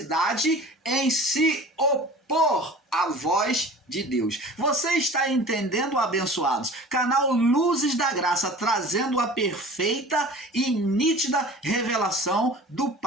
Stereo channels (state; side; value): normal; both; correlation 0.42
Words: em se opor à voz de Deus. Você está entendendo, abençoados? Canal Luzes da Graça, trazendo a perfeita e nítida revelação do